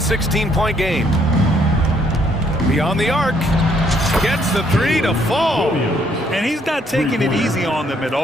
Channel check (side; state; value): both; normal; correlation 0.68